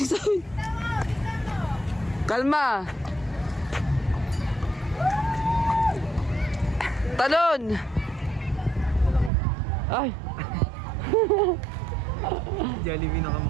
sa akin. Kalma. Talon. Ay. Jollibee na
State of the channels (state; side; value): drops out; left; at 9.3 s